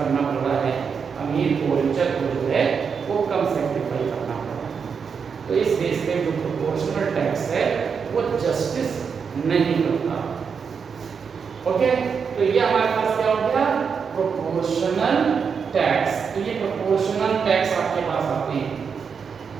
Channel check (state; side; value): quieter; left; 6.2 dB